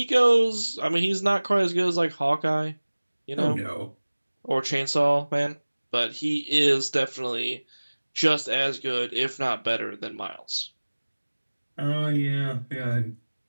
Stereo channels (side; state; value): both; inverted; correlation -1.00